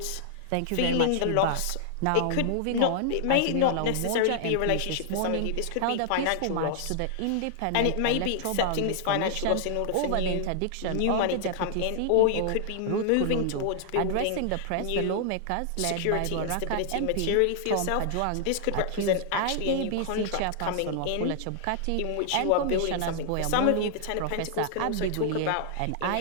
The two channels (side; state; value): both; different; correlation -0.01